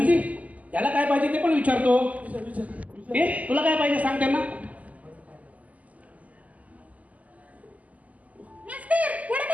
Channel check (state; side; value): late; left; 0.074 ms